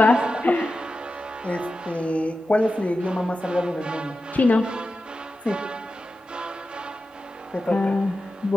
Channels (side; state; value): both; normal; correlation 0.92